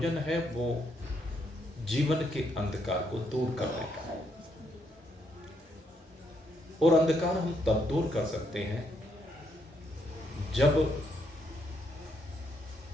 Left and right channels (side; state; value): both; normal; correlation 0.75